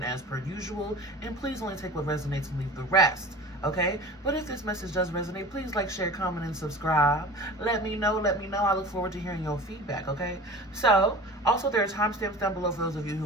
as per usual. And please only take what resonates and leave the rest. Okay? But if this message does resonate, please like, share, comment, and subscribe. Let me know. I look forward to hearing your feedback, okay? So, also there are timestamps down below for those of you who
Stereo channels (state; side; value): normal; both; correlation 0.38